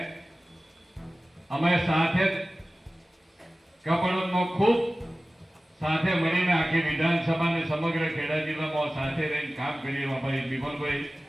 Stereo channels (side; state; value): both; normal; correlation 0.97